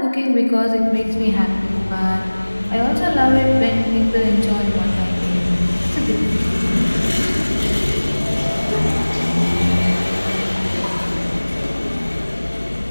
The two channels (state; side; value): inverted; both; correlation -1.00